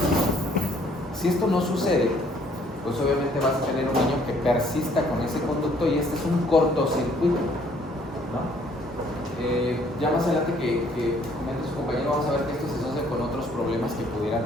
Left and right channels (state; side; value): normal; both; correlation 0.62